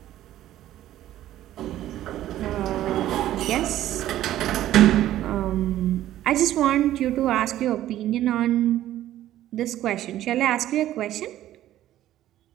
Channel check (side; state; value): left; quieter; 13.3 dB